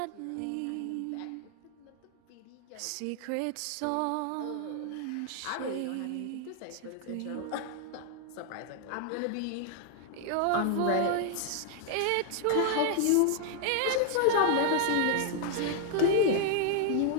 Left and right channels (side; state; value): both; different; correlation 0.00